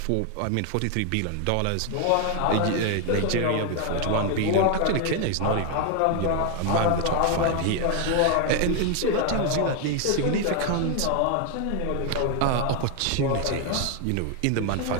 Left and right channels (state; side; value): different; both; correlation 0.01